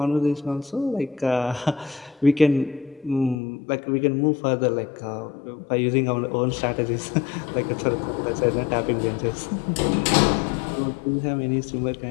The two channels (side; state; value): right; drops out; at 3.4 s